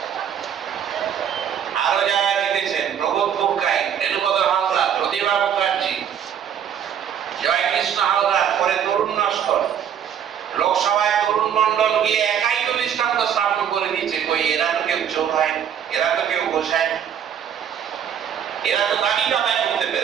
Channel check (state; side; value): quieter; left; 8.8 dB